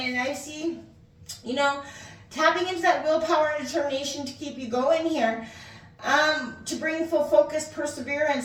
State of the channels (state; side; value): identical; both; correlation 1.00